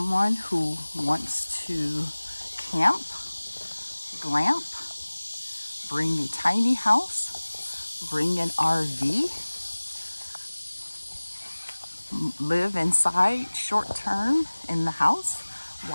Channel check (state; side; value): inverted; both; correlation -1.00